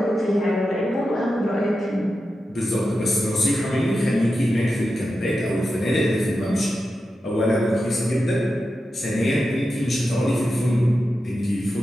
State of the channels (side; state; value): both; normal; correlation 0.90